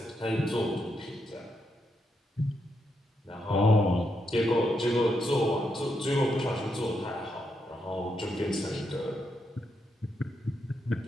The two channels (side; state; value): both; normal; correlation 0.81